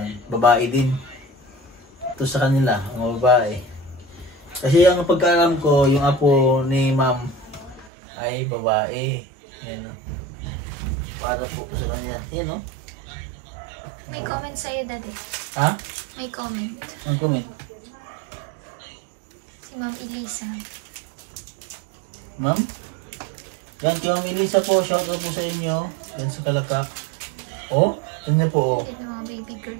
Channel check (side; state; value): left; drops out; at 7.9 s